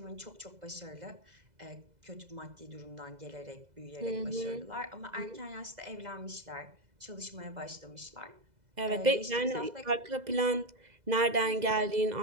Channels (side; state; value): left; late; 2.0 ms